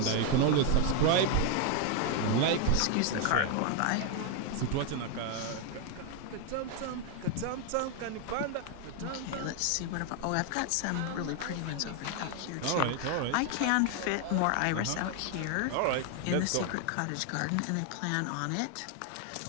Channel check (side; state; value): both; different; correlation 0.01